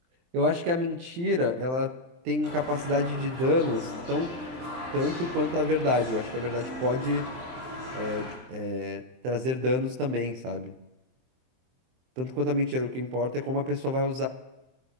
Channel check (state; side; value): late; left; 23 ms